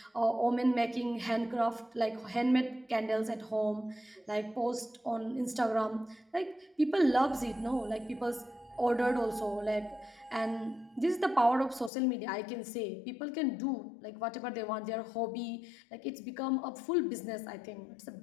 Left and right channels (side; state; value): right; drops out; at 11.9 s